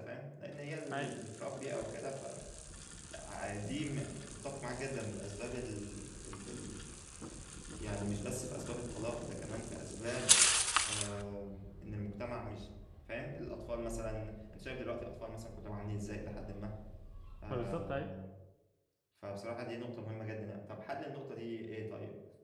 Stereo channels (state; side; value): identical; both; correlation 1.00